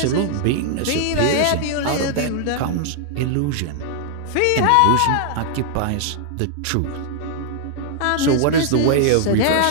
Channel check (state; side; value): different; both; correlation 0.00